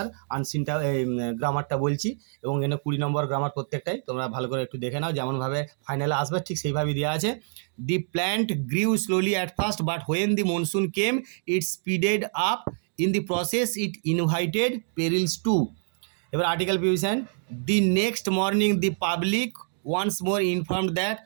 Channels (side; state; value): left; silent; 61 dB below the other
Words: আনসিনটা গ্রামারটা বলছি, এবং এখানে 20 নম্বর গ্রামার প্রত্যেকটাই তোমরা ভালো করে একটু দেখে নাও, যেমনভাবে ফাইনালে আসবে ঠিক সেইভাবেই দেওয়া আছে। The plant grew slowly at first but when the monsoon came it speeded up, in the process it invited perils too. এবার article preposition, the next morning the public once more informed that